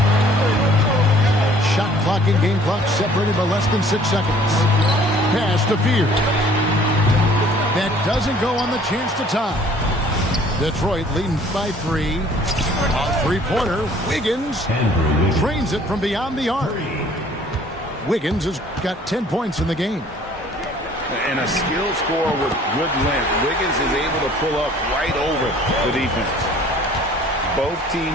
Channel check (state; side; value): normal; both; correlation 0.55